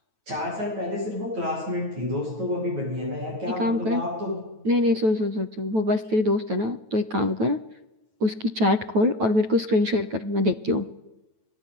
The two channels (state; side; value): late; left; 9.2 ms